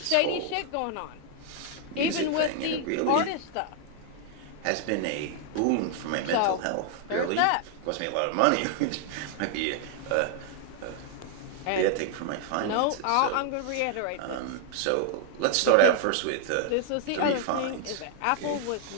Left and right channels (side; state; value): both; different; correlation 0.00